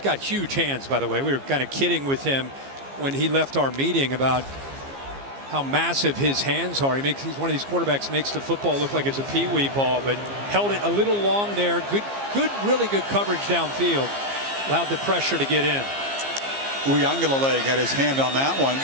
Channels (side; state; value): left; late; 15 ms